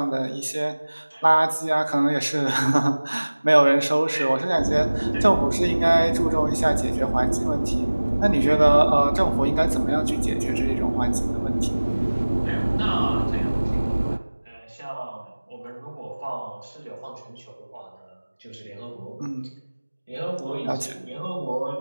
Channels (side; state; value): both; inverted; correlation -1.00